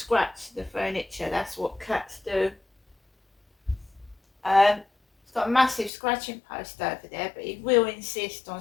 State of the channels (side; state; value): right; drops out; at 5.9 s